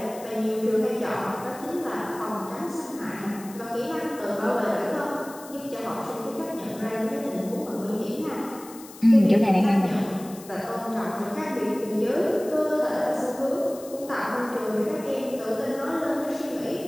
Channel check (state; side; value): noise; left; hiss, 18 dB below the sound